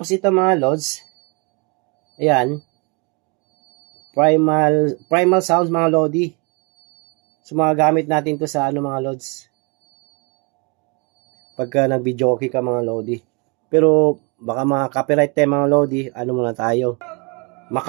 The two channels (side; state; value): left; quieter; 32.4 dB